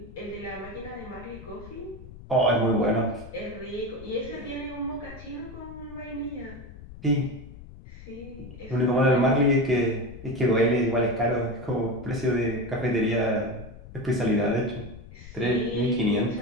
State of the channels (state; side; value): noise; left; rumble, 16 dB below the sound